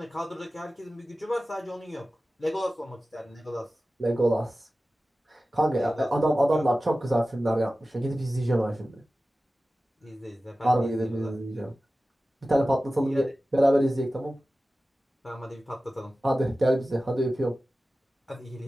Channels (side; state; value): both; normal; correlation 0.95